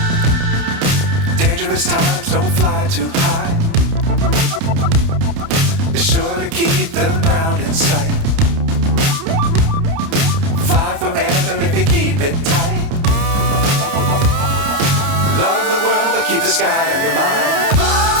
Dangerous times, don't fly too high. Be sure to keep the ground in sight. Fly forever if you keep it tight. Love the world, but keep the sky on your mind.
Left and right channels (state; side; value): late; left; 30 ms